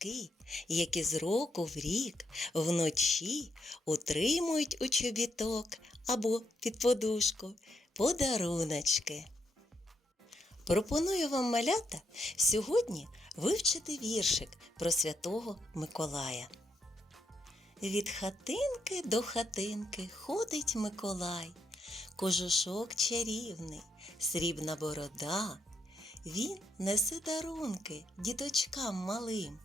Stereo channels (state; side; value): normal; both; correlation 0.78